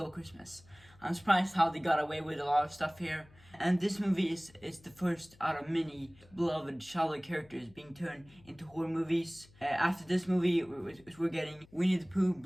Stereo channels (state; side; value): noise; left; hum, 26 dB below the sound